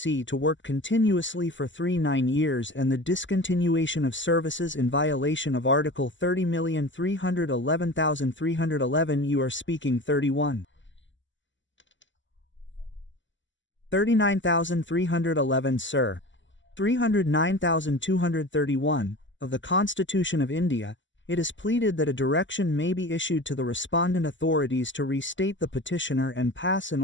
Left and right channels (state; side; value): late; right; 0.54 ms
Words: to work continuously for 9 years and the discontinuation of services in violation of Article 30,311,311. You are speaking 31. 39,311, sir. 309,231 of the Constitution of India. It is pleaded that a direction may be issued to the respondent authorities to restate the petitioner and pass an